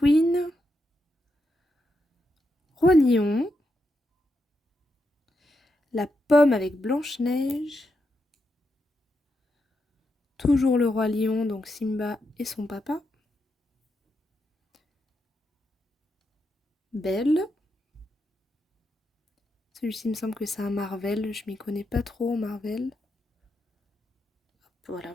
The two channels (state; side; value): normal; both; correlation 0.84